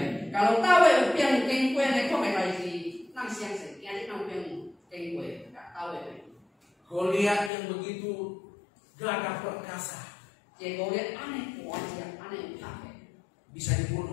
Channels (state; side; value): drops out; right; at 7.5 s